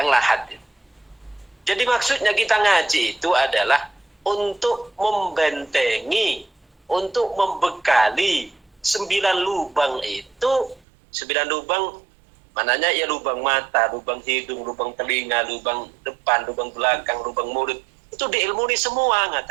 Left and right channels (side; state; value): left; drops out; at 10.8 s